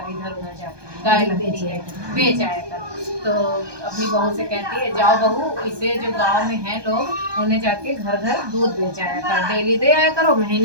इधर उधर जाके गाय लगती है, बेच आया कर। तो अपनी बहू से कहती है, जाओ बहू, इसे जो गांव में हैं लोग, उन्हें जाके घर घर दूध बेच आया कर, डेली दे आया करो,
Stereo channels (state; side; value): late; left; 1.2 ms